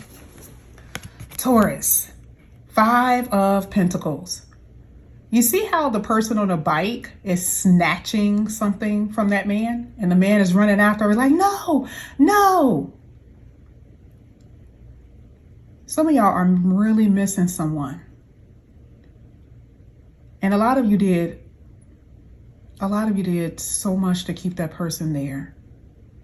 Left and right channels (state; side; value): identical; both; correlation 1.00